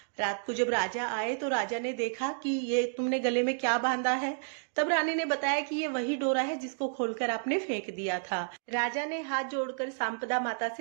रात को जब राजा आए तो राजा ने देखा कि ये तुमने गले में क्या बांधा है। तब रानी ने बताया कि ये वही डोरा है जिसको खोलकर आपने फेंक दिया था। राजा ने हाथ जोड़कर सांपदा माता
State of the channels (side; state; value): left; silent; digital silence